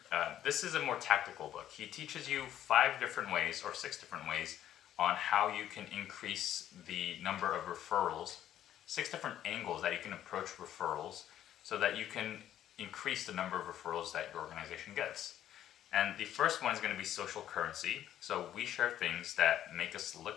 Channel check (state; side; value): quieter; right; 11.5 dB